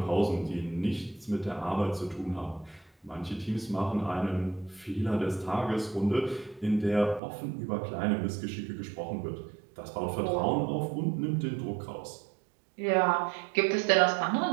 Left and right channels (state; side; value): drops out; left; at 7.2 s